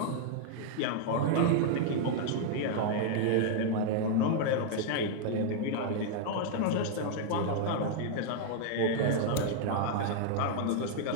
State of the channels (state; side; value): different; both; correlation -0.01